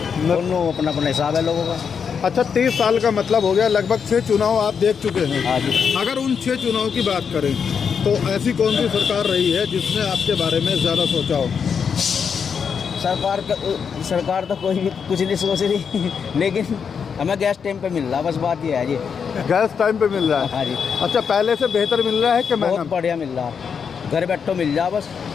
दोनों अपना अपना हिसाब है लोगों का। अच्छा, 30 साल का मतलब हो गया, लगभग 6 चुनाव आप देख चुके हैं। हाँ जी। अगर उन 6 चुनाव की बात करें तो ऐसी कौन सी सरकार रही है जिसने आपके बारे में ज़्यादा सोचा हो? सरकार तो कोई भी कुछ नहीं सोच रही, लेकिन हमें गैस टाइम पे मिल रहा, बस बात ये है जी। गैस टाइम पे मिल रहा है? हाँ जी। अच्छा, पहले से बेहतर मिल रहा है कि महंगा? बहुत बढ़िया मिल रहा, घर बैठो मिल जा, बस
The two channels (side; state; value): right; quieter; 6.6 dB